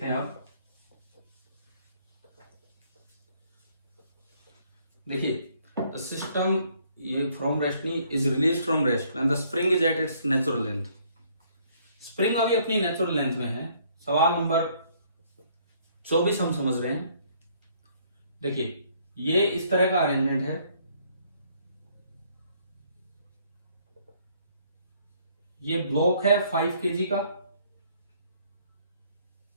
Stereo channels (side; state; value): both; inverted; correlation -0.64